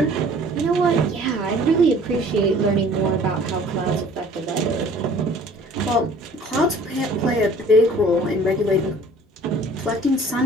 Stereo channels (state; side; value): normal; both; correlation 0.51